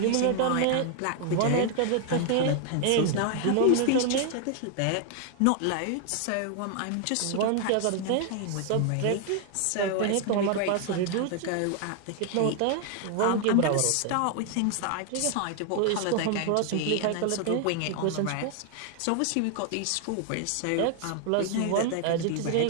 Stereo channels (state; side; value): different; both; correlation 0.00